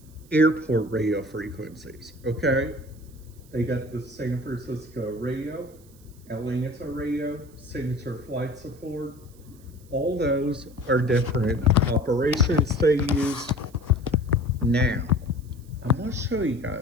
airport radio frequencies, okay? They got the San Francisco radio, Atlanta radio, Signature Flight Support. All those are different operations they use. Now, I'm going to show you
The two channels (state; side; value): noise; right; hiss, 27 dB below the sound